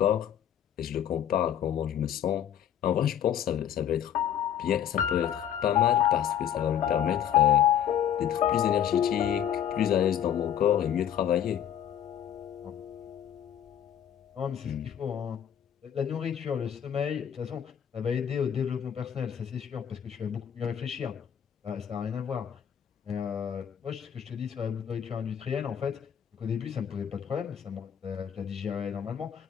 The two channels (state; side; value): quieter; right; 9.5 dB